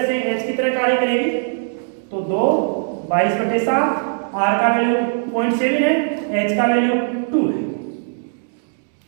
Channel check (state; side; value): silent; left; digital silence